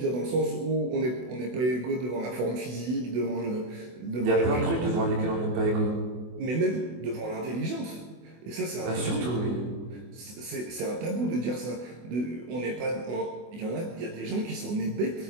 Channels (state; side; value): late; left; 24 ms